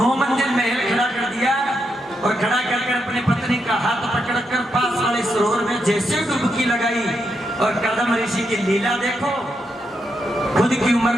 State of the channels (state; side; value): normal; both; correlation 0.82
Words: मंजिल महल खड़ा कर दिया, और खड़ा कर अपनी पत्नी का हाथ पकड़कर पास वाले सरोवर में जैसे डुबकी लगाई। और कर्दम ऋषि की लीला देखो, खुद की उम्र